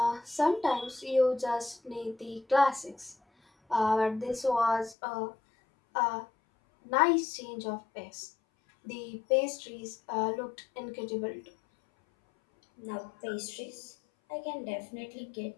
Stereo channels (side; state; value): right; drops out; at 5.0 s